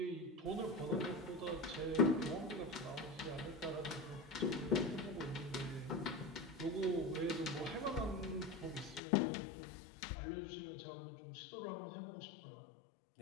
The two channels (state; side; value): drops out; right; at 9.0 s